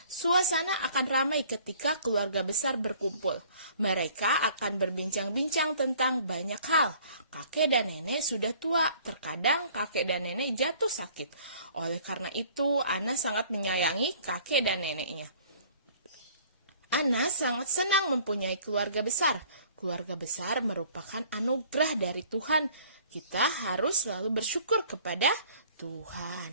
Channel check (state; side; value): inverted; both; correlation -0.54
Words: Suasana akan ramai ketika keluarga besar berkumpul. Mereka akan berbincang-bincang tentang banyak hal. Kakek dan nenek sudah tua, terkadang kakek dan nenek jatuh sakit. Oleh karena itu, Ana sangat menyayangi kakek dan neneknya. Ana sangat senang mempunyai keluarga besar. Keluarga besar merupakan anugerah dari Tuhan. Kita harus selalu bersyukur kepada